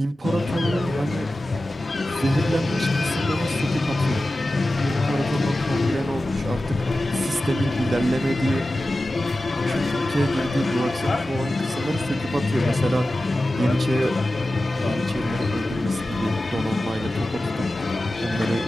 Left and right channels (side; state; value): both; normal; correlation 0.94